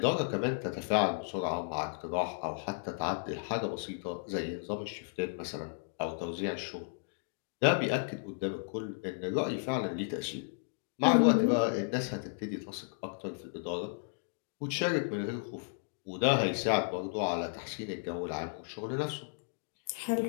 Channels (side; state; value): right; silent; digital silence